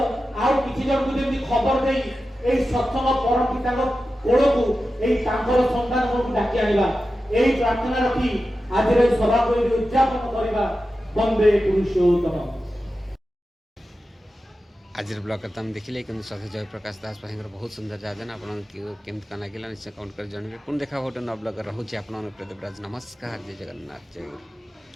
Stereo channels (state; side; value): normal; both; correlation 0.92